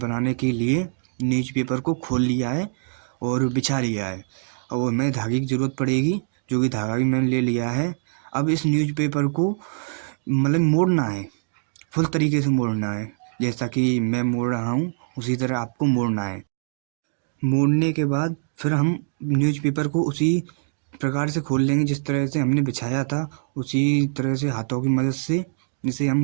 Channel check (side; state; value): left; silent; digital silence